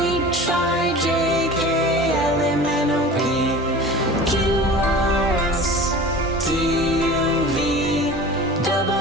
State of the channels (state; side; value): normal; both; correlation 0.38